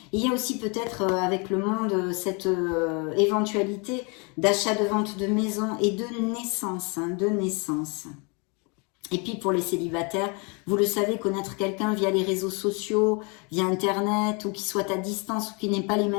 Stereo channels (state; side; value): quieter; right; 32.3 dB